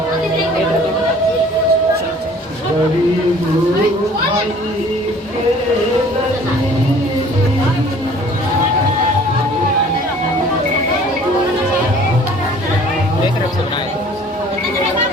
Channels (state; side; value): normal; both; correlation 0.51